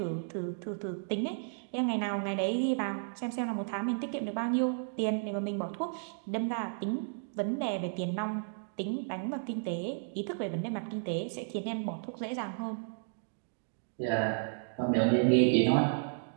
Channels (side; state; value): left; silent; digital silence